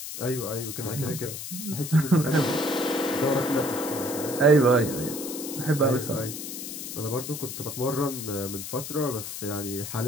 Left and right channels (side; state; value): left; noise; hiss, 8 dB below the sound